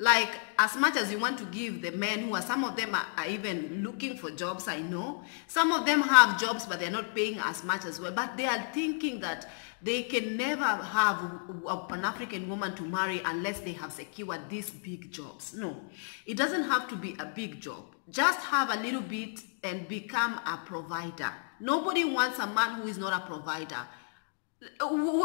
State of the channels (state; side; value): silent; right; 57 dB below the other